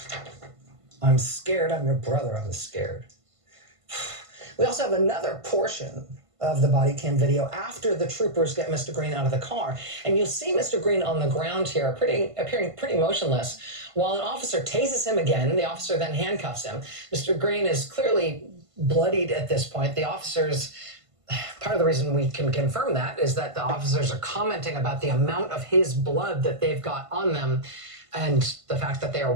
I'm scared, I'm your brother, I'm scared. We also have another portion of the body cam video after the troopers get Mr. Greene out of the car. And you'll see Mr. Greene on the ground here, appearing pretty motionless, while an officer tases him again. The officer then handcuffs him. Mr. Greene is clearly bloodied at this point. The officers, part of the reason we can confirm that is that the officers are commenting about the amount of his blood that they've got on them and the fact that they are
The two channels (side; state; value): left; late; 1.5 ms